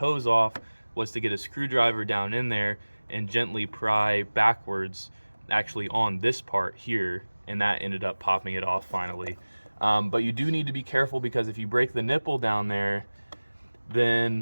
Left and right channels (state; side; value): inverted; both; correlation -1.00